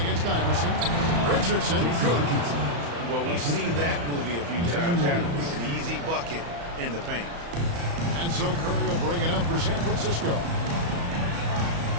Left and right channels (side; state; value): left; late; 35 ms